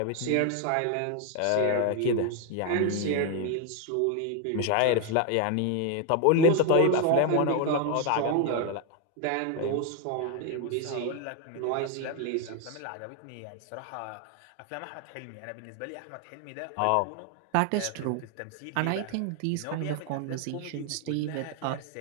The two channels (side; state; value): both; different; correlation 0.01